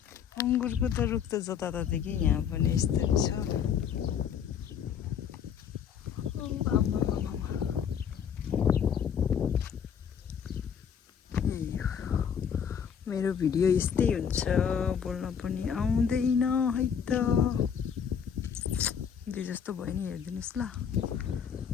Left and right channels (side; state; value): right; quieter; 7.7 dB